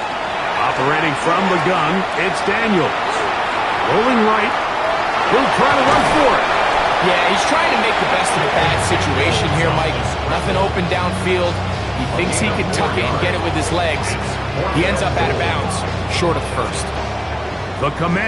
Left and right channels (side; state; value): both; identical; correlation 1.00